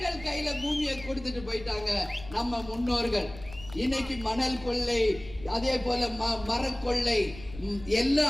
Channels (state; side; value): noise; left; rumble, 16 dB below the sound